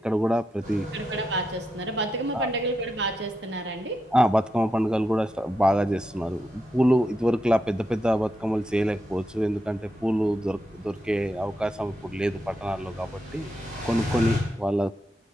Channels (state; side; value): normal; both; correlation 0.85